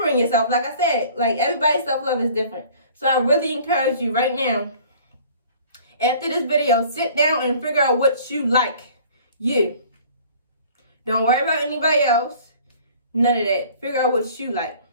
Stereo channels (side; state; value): both; inverted; correlation -0.50